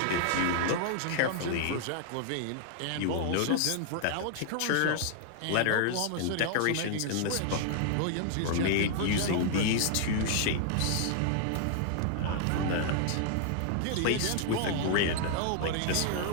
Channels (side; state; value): both; different; correlation -0.01